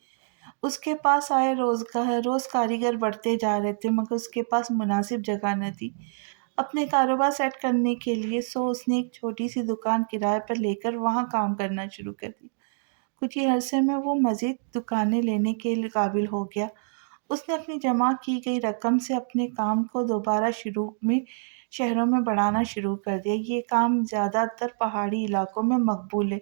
اس کے پاس آئے روز کاریگر بڑھتے جا رہے تھے، مگر اس کے پاس مناسب جگہ نہ تھی اپنے کاروبار سیٹ کرنے کے لیے، سو اس نے ایک چھوٹی سی دکان کرائے پر لے کر وہاں کام کرنا شروع کر دیا۔ کچھ ہی عرصے میں وہ مزید دکانیں لینے کے قابل ہو گیا۔ اس نے اپنی جمع کی گئی رقم سے اپنے کام کو دوبارہ شہروں میں بڑھانا شروع کر دیا۔ یہ کام زیادہ تر پہاڑی علاقوں میں مقبول ہے،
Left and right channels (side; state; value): left; silent; digital silence